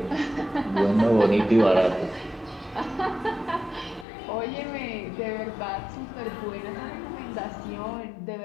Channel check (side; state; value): right; drops out; at 4.0 s